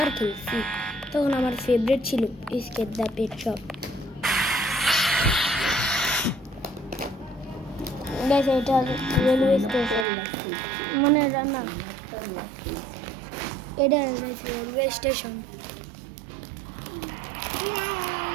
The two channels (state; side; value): drops out; left; at 10.1 s